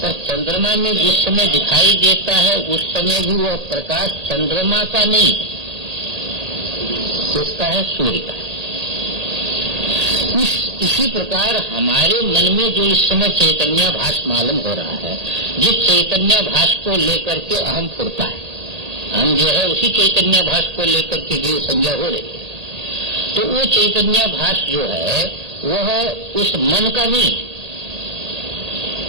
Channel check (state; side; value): late; left; 1.8 ms